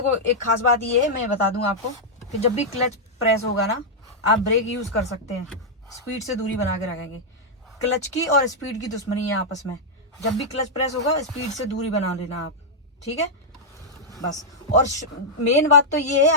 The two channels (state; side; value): normal; both; correlation -0.06